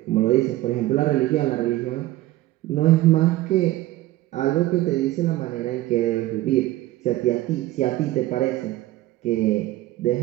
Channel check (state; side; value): quieter; left; 16.2 dB